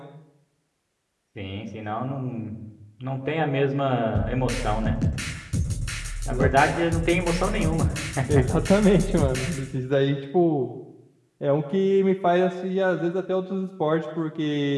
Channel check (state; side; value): identical; both; correlation 1.00